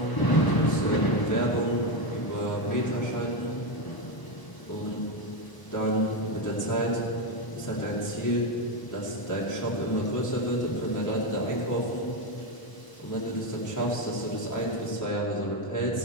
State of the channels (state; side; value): late; right; 1.0 ms